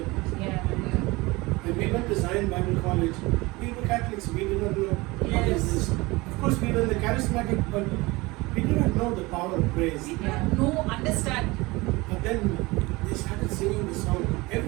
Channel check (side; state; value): left; quieter; 22.6 dB